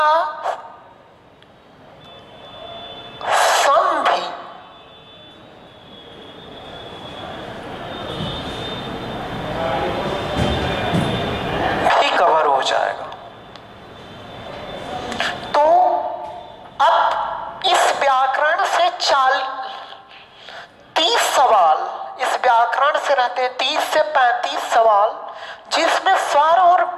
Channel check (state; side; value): identical; both; correlation 1.00